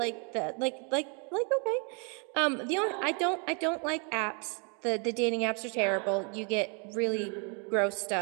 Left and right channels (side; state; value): left; quieter; 36.7 dB